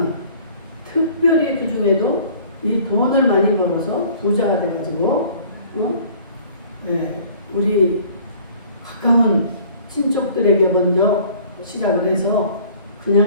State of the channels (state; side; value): inverted; both; correlation -0.51